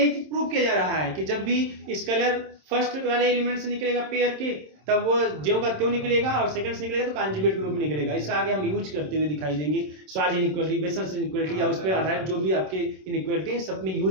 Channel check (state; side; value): late; left; 27 ms